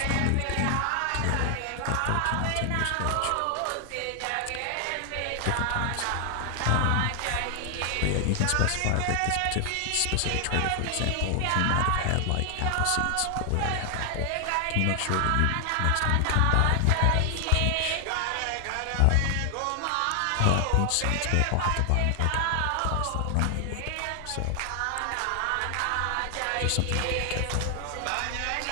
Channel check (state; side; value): different; both; correlation 0.00